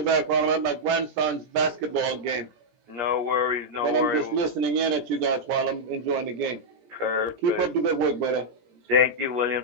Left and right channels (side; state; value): left; late; 17 ms